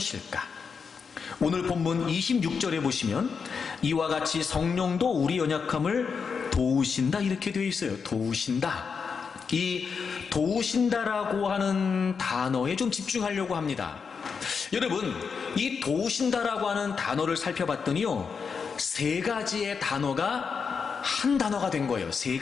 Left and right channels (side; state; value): right; quieter; 5.8 dB